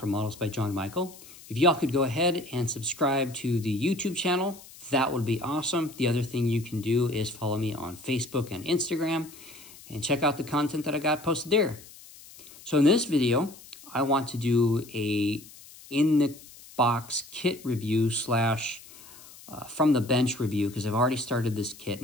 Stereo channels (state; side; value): noise; left; hiss, 20 dB below the sound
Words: Models by John Michael. If y'all could go ahead and subscribe to the YouTube channel, that would be awesome. The other thing you can do is follow me on Facebook and Instagram and check out the content that I got posted there. So in this video, I want to do a in-the-box kit review slash from the bench review because I've already started this kit